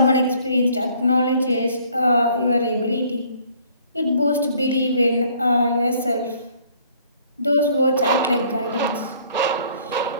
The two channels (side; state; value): both; inverted; correlation -0.59